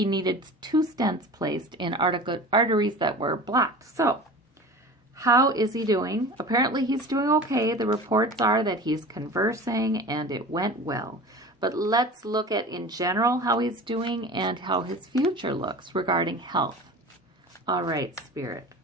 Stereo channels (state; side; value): normal; both; correlation 0.37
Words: needed 2 stents placed in arteries that were blocked. So, how is he doing? Apparently, he's doing okay. The reports are that he's conversing, and it went well. But let's look at, in general, how he's doing and how his future looks regarding health. All right, Spirit.